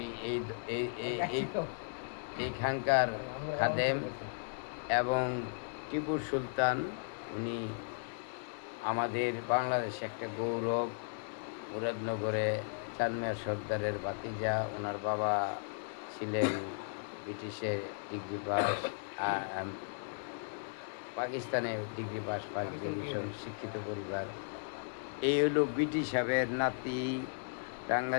এই এই এই এই খানকার খাদেম এবং টিপু সুলতান। উনি আমাদের বাংলাদেশে একটা গৌরব। মুরাদনগরে চাঁদমিয়া সর্দারের ভাতিজা। ওনার বাবা ছিলেন ব্রিটিশে ডিগ্রি পাস, পাকিস্তানে ডিগ্রি পাস, ফার্স্ট ডিভিশন, শিক্ষিত পরিবার। এই হলো ব্রিটিশ সাহেবের নাতি।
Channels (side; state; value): right; silent; digital silence